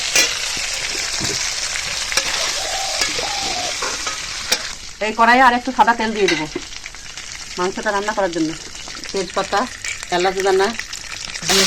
এই কড়াইয়ে আর একটু সাদা তেল দিয়ে দেবো মাংসটা রান্না করার জন্য। তেজপাতা, এলাচ দানা দিয়ে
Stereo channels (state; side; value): identical; both; correlation 1.00